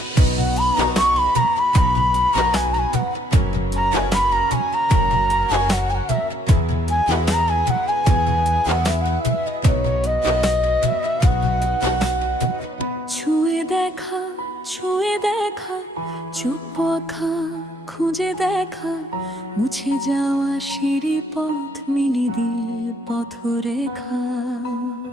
ছুঁয়ে দেখা, ছুঁয়ে দেখা, চুপ আঁখা খুঁজে দেখা, মুছে যাওয়া সিঁড়ি পথ মিলি দিল পথরেখা।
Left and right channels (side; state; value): both; normal; correlation 0.69